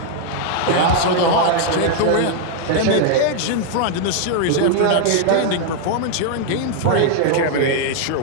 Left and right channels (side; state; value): both; different; correlation 0.00